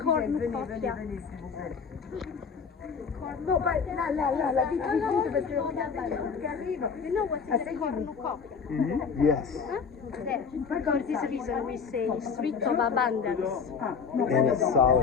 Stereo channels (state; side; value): quieter; right; 5.9 dB